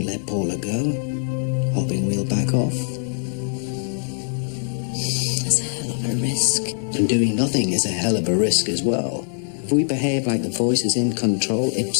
let Paula go, hoping we'll back off. risk. And doing nothing is a hell of a risk as well. If we behave like the voice is in control,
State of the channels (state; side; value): silent; right; digital silence